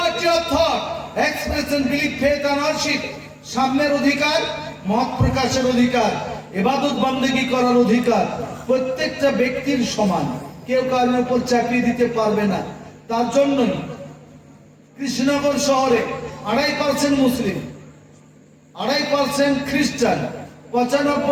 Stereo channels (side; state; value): both; identical; correlation 1.00